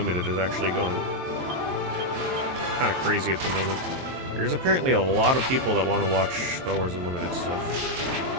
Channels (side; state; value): left; late; 22 ms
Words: is actually going kind of crazy at the moment. There's apparently a lot of people that want to watch Star Wars Unlimited stuff.